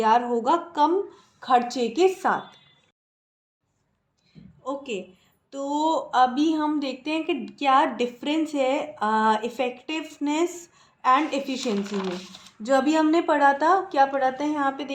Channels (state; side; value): identical; both; correlation 1.00